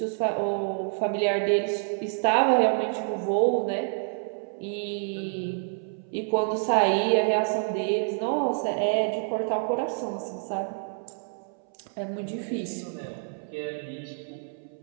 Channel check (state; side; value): silent; left; 60 dB below the other